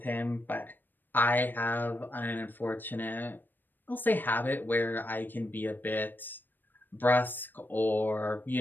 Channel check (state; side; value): late; right; 0.092 ms